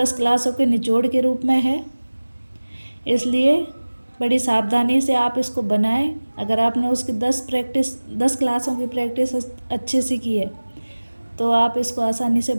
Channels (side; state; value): both; inverted; correlation -1.00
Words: क्लासों के निचोड़ के रूप में है। इसलिए बड़ी सावधानी से आप इसको बनाएं। अगर आपने उसकी 10 क्लासों की प्रैक्टिस अच्छे से की है तो आप इसको आसानी से